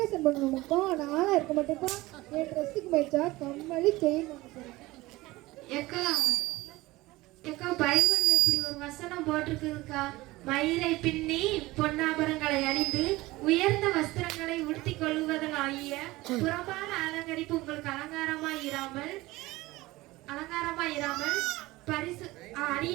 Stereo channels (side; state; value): left; quieter; 19.6 dB